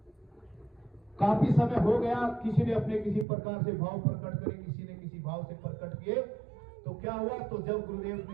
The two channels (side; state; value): left; drops out; at 3.2 s